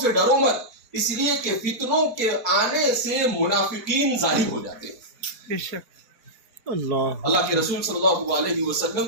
ڈرو مت، اس لیے کہ فتنوں کے آنے سے منافقین ظاہر ہو جاتے ہیں. اللہ کے رسول صلی اللہ علیہ وسلم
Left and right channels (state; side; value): late; left; 4.0 ms